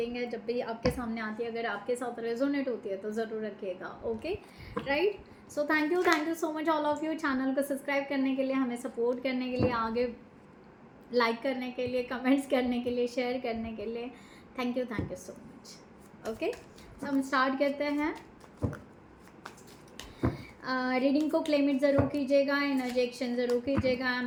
है। जब भी आपके सामने आती है, अगर आपके साथ रेजोनेट होती है तो ज़रूर रखिएगा। Okay, right. So thank you so much all of you, channel को सब्सक्राइब करने के लिए, हमें सपोर्ट करने के लिए, आगे लाइक करने के लिए, कमेंट्स करने के लिए, शेयर करने के लिए। Thank you so much. Okay, तो हम स्टार्ट करते हैं। रीडिंग को क्लेम इट ज़रूर कीजिएगा, एनर्जी एक्सचेंज ज़रूर कीजिएगा। I am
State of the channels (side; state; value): both; identical; correlation 1.00